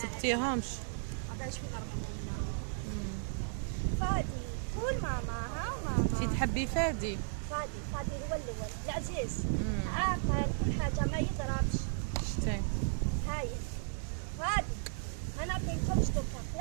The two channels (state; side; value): silent; left; digital silence